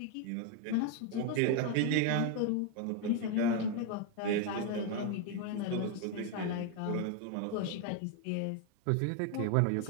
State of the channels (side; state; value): both; different; correlation 0.01